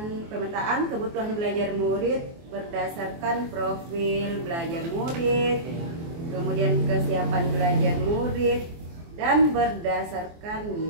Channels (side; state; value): left; late; 24 ms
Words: kebutuhan belajar murid berdasarkan profil belajar murid, kemudian kesiapan belajar murid, dan berdasarkan